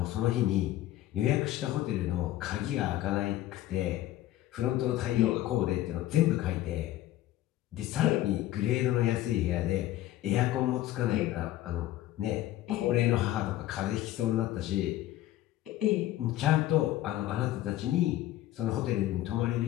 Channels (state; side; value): quieter; right; 14.5 dB